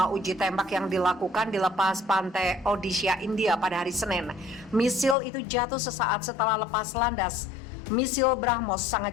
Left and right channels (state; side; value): drops out; right; at 5.2 s